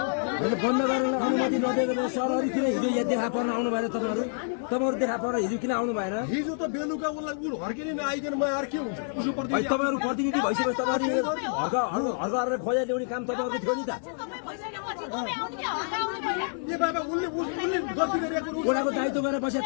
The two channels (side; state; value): right; silent; digital silence